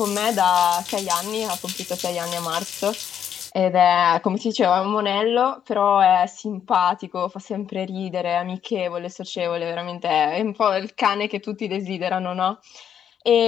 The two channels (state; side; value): quieter; right; 8.9 dB